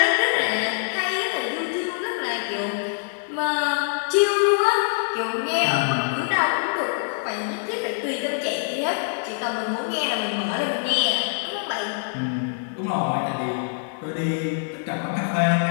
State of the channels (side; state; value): right; silent; 62 dB below the other